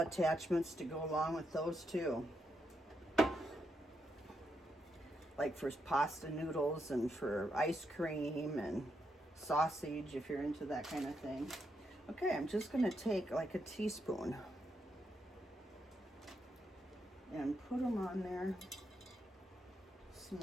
attachments to go along with those too. Like for pasta noodles and for ice cream and sausage if you're into that kind of thing. Okay, I'm just going to take like a teaspoon and put them on there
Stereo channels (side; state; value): both; normal; correlation 0.81